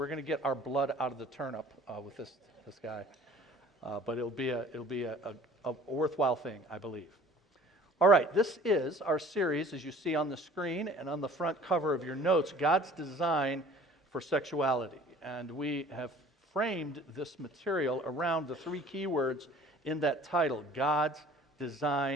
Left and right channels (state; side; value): normal; both; correlation 0.49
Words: going to get our blood out of the turnip with this guy. But it'll be a worthwhile thing, I believe. All right, this is our series, as you see on the screen and on the front cover of your notes, God's Design for Sexuality. And we have framed this material around the 3 keywords in that title: God's